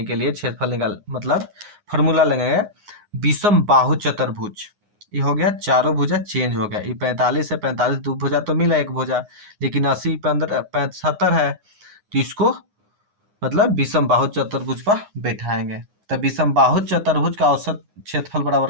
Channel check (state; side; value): late; left; 9.7 ms